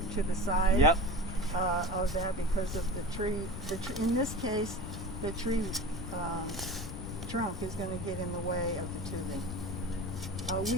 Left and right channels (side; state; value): left; noise; rumble, 8 dB below the sound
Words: the side Yep. of that, because of the tree. In this case, the tree trunk is going to get in the way of the tubing.